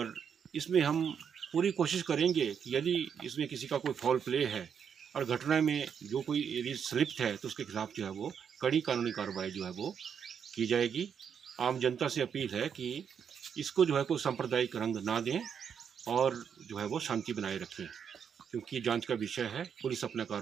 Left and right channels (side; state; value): left; quieter; 7.4 dB